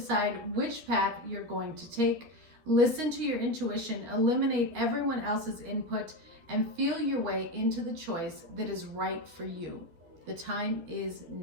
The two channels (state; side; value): late; left; 12 ms